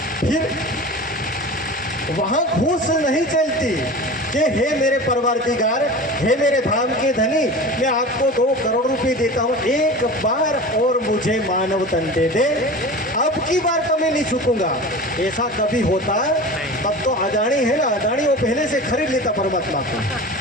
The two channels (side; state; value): both; normal; correlation 0.34